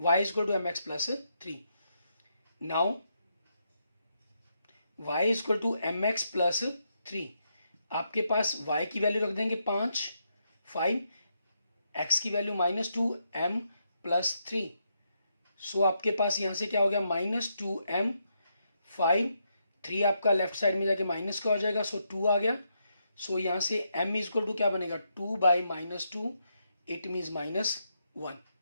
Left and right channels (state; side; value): inverted; both; correlation -0.80